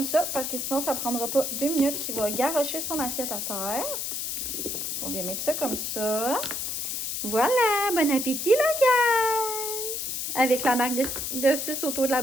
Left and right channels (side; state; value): left; noise; hiss, 3 dB below the sound